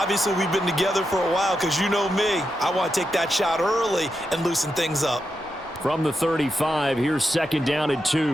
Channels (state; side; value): normal; both; correlation 0.86